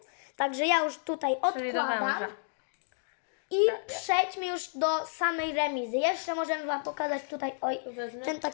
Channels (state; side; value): silent; right; digital silence